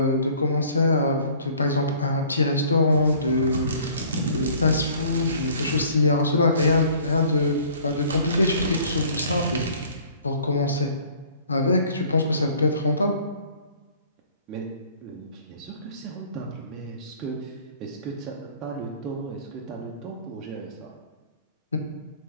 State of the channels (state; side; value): inverted; both; correlation -0.53